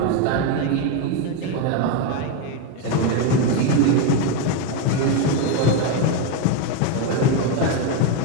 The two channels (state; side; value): different; both; correlation 0.03